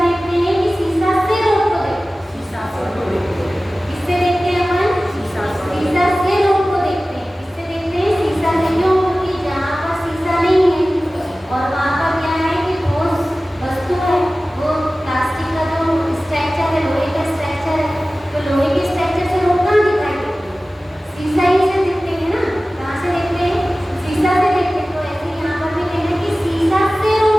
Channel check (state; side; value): normal; both; correlation 0.97